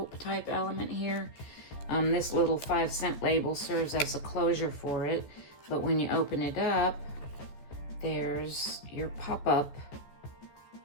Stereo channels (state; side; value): late; right; 14 ms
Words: type element here. This little 5-cent label serves as a closure for it, but when you open it up, there's your pop-up